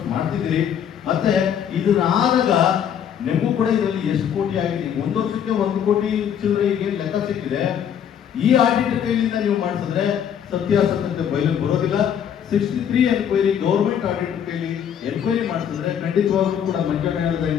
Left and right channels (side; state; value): right; quieter; 8.8 dB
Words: ಮಾಡ್ತಿದ್ದೀರಿ. ಮತ್ತೆ ಇದನ್ನ ಆದಾಗ ನಿಮಗೂ ಕೂಡ ಇದರಲ್ಲಿ ಎಷ್ಟು ಕೋಟಿ ಆಗಿದೆ? 1 ವರ್ಷಕ್ಕೆ 1 ಕೋಟಿ ಚಿಲ್ಲರೆಗೆ ಲೆಕ್ಕ ಸಿಕ್ಕಿದೆ. ಈ ಆಡಿಟರ್ ಕೈಲಿಂದ ನೀವು ಮಾಡಿಸಿದ್ರೆ ಸತ್ಯಾಸತ್ಯತೆ ಬಯಲಿಗೆ ಬರೋದಿಲ್ಲ. 63 ಎನ್ಕ್ವೈರಿ ಗೌರ್ಮೆಂಟ್ ಆಡಿಟ್ ಕೈಲಿ ಎನ್ಕ್ವೈರಿ ಮಾಡಿಸಿದ್ರೆ ಖಂಡಿತವಾಗ್ಲೂ ಕೂಡ ಮಂಜಣ್ಣ